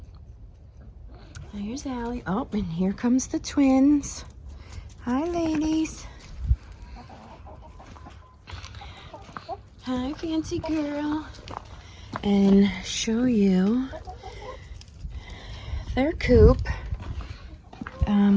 There's Allie. Oh, and here comes the twins. Hi, ladies. Hi, fancy girl. And show you their coop.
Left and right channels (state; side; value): identical; both; correlation 1.00